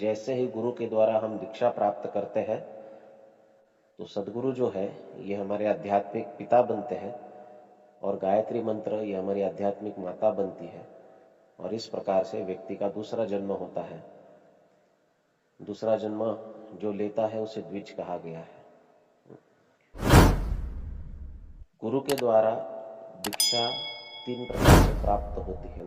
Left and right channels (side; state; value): both; identical; correlation 1.00